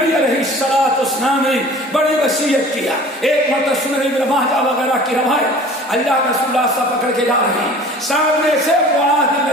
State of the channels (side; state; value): both; normal; correlation 0.45